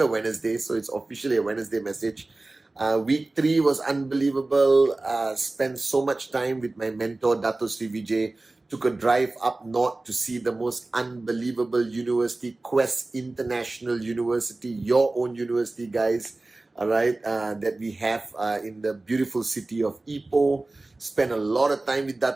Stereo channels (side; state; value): left; quieter; 3.0 dB